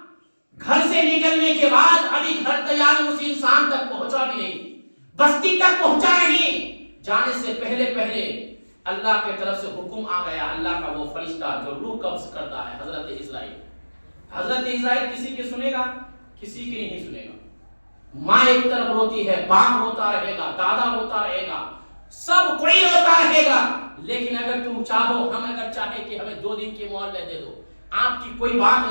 گھر سے نکلنے کے بعد ابھی گھر تیار اس انسان تک پہنچا بھی نہیں, بستی تک پہنچا نہیں, جانے سے پہلے اللہ کے طرف سے حکم آ گیا. اللہ کا وہ فرشتہ جو روح قبض کرتا ہے, حضرت اسرائیل. حضرت اسرائیل کسی کی سنے گا؟ کسی کی نہیں سنے گا. ماں ایک طرف روتی ہے, باپ روتا رہے گا, دادا روتا رہے گا, سب کوئی روتا رہے گا, لیکن اگر تم چاہو, ہم اگر چاہے کہ ہمیں 2 دن کی مہلت دے دو, آپ کی کوئی بات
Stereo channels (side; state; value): both; inverted; correlation -1.00